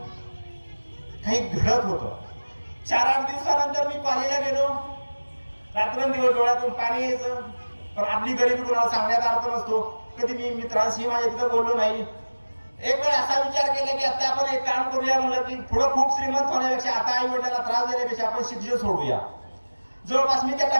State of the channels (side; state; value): both; inverted; correlation -1.00